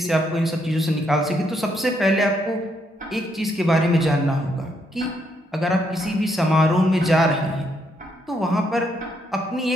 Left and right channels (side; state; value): both; normal; correlation 0.75